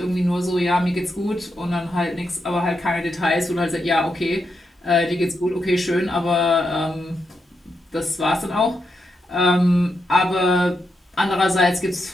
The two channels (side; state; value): both; normal; correlation 0.84